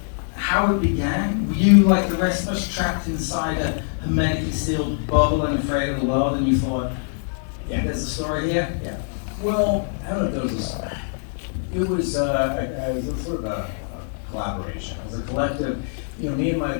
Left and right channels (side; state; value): right; silent; digital silence